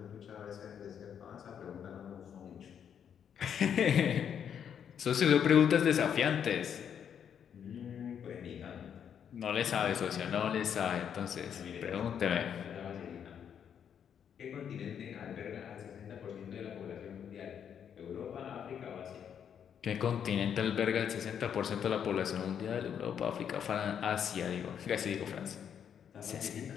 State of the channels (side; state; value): right; quieter; 8.3 dB